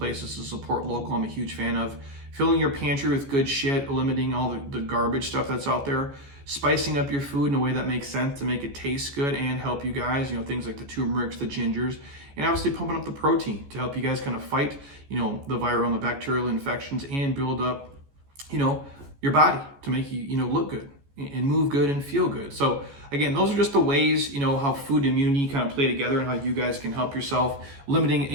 to support local. I'm a huge fan of filling your pantry with good shit, eliminating all the garbage stuff that's out there, spicing up your food in a way that makes sense to make it taste good and help you guys, things like the turmerics, the gingers, and obviously pumping up the protein to help you guys kind of fight, the viral and the bacterial infections and build up, your body to make you, look good and move good and feel good. So again, those are just the ways, how food and immunity kind of play together and how you guys can help yourself.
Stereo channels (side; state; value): left; late; 14 ms